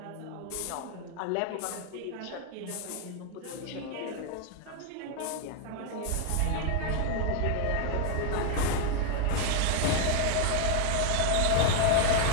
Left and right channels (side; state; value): both; different; correlation 0.00